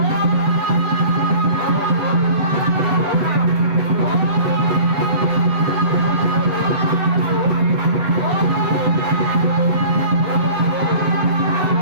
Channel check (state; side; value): late; left; 7.9 ms